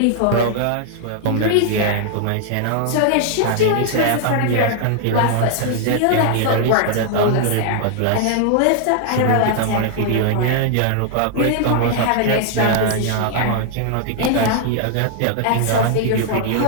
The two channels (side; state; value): both; different; correlation 0.00